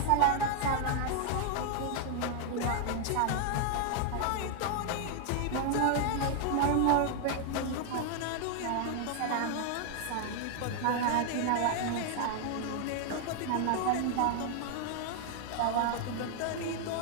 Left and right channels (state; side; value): different; both; correlation 0.00